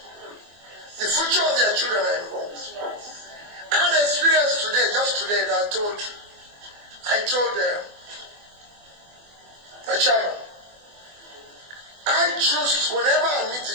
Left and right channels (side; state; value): left; late; 24 ms